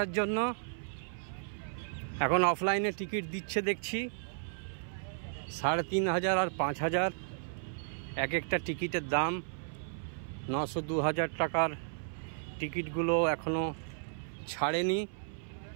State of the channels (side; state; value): left; silent; 55 dB below the other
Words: জন্য। এখন অফলাইনে টিকিট দিচ্ছে দেখছি 3,500 আর 5,000 এক একটা টিকিটের দাম। 900-2,000 টাকার টিকিটগুলো এখনও ছাড়েনি,